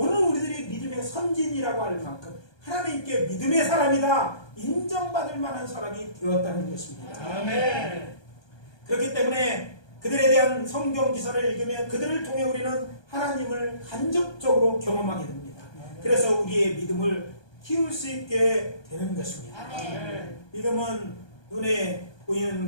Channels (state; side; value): late; right; 1.2 ms